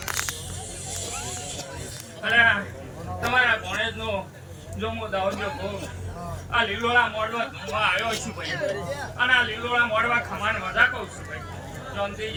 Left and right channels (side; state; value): both; identical; correlation 1.00